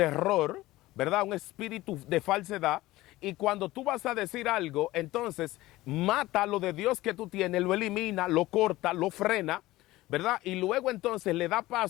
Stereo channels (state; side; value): quieter; right; 17.7 dB